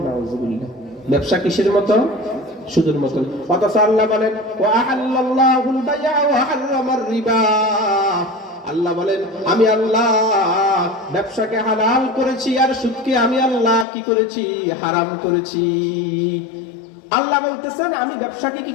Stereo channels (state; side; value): drops out; right; at 13.9 s